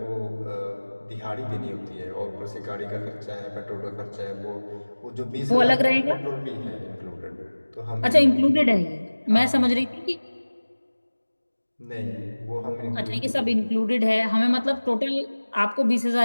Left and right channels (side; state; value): both; inverted; correlation -1.00